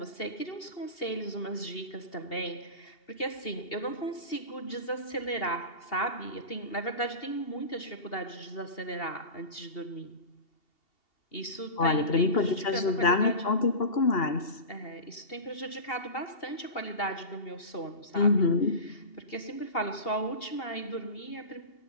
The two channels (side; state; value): right; late; 2.8 ms